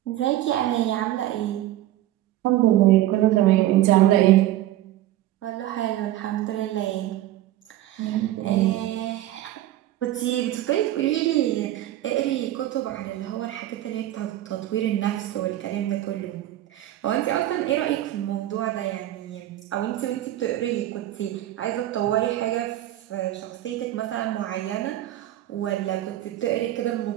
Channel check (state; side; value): quieter; left; 14.1 dB